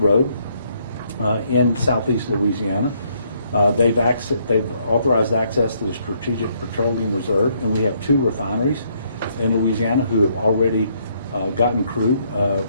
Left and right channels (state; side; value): inverted; both; correlation -0.70